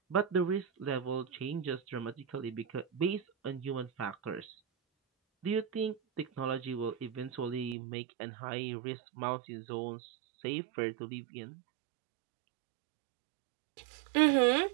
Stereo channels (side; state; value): left; drops out; at 7.8 s